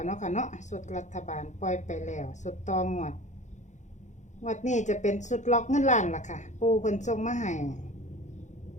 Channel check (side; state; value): right; late; 0.35 ms